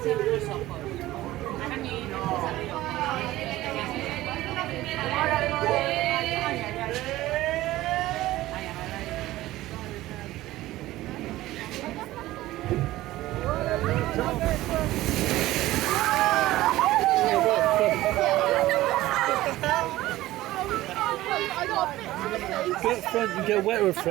Go at front, you get wetter at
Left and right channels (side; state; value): left; quieter; 16.4 dB